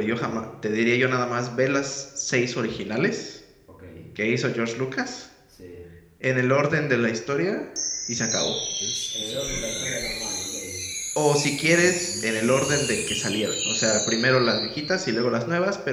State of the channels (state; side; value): identical; both; correlation 1.00